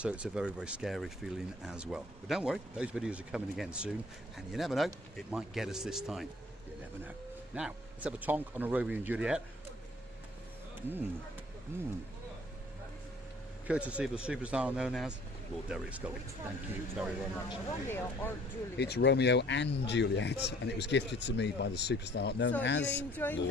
it's a very, very scary feeling as well. But don't worry, those videos are coming again soon, and you never know, it might get us this time. You never know. Now, let's have a tonk on a Romeo and Juliet. Courtesy of the superstar known as Lord Derek Scully. Thank you very, very much. Romeo or Juliet? It's Romeo and Juliet, and it was gifted to me by the superstar known as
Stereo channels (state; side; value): normal; both; correlation 0.55